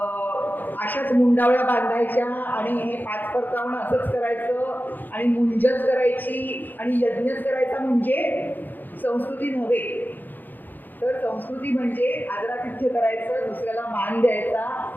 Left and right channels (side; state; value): right; late; 0.087 ms